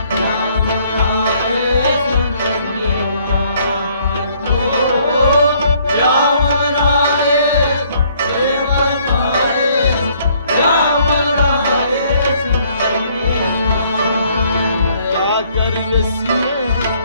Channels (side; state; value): both; inverted; correlation -0.64